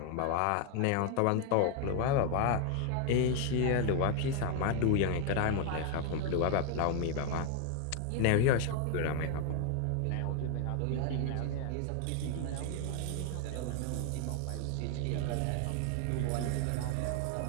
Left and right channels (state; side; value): different; both; correlation 0.00